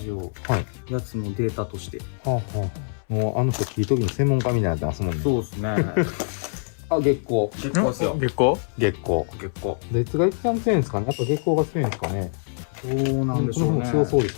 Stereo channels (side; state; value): right; silent; 62 dB below the other